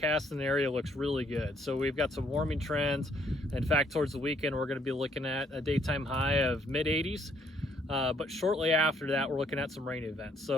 in the area looks really good. So we've got some warming trends. In fact, towards the weekend, we're going to be looking at a daytime high of mid-80s. But shortly after that, we're looking at some rain events.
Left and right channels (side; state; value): both; normal; correlation 0.67